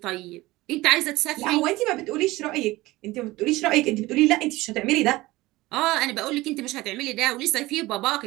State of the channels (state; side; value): quieter; left; 19.3 dB